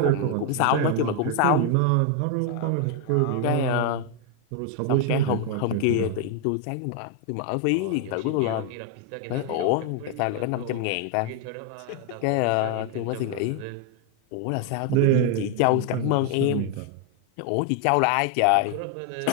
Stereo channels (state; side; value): different; both; correlation 0.00